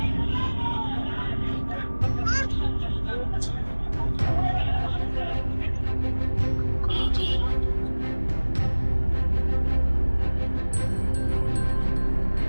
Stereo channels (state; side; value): inverted; both; correlation -1.00